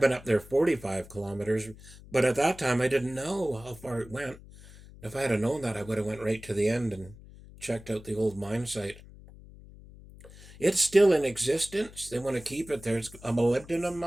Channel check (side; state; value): left; noise; hum, 19 dB below the sound